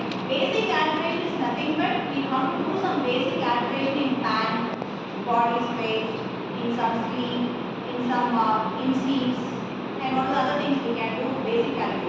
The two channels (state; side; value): identical; both; correlation 1.00